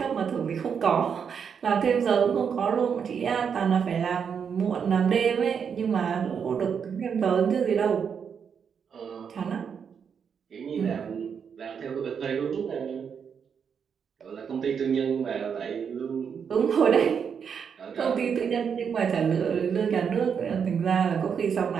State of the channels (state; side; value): quieter; left; 6.9 dB